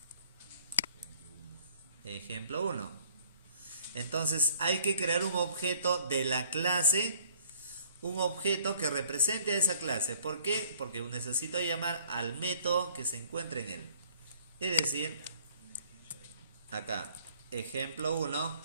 Ejemplo 1. Entonces, hay que crear un objeto de la clase, un objeto que represente a esa clase. ¿Por qué? Porque necesito llamar al método que se encuentre en él. Es decir, acá, ejemplo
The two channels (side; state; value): both; inverted; correlation -0.58